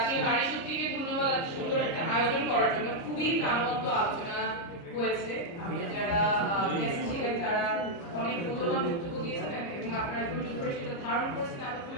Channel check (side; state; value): right; late; 30 ms